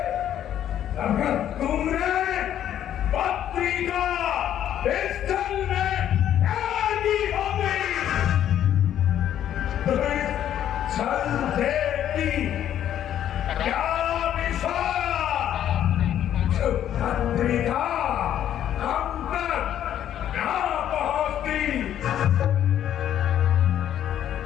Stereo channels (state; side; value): quieter; right; 10.8 dB